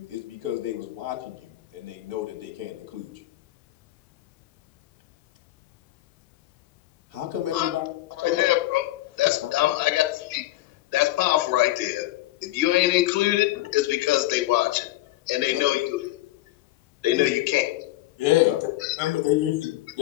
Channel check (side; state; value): right; quieter; 16.5 dB